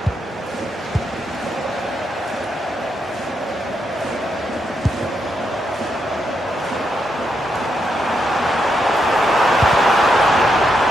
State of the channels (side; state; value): both; normal; correlation 0.81